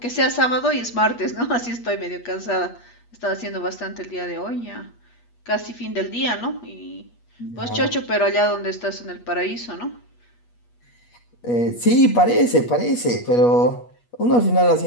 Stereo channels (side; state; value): right; late; 8.3 ms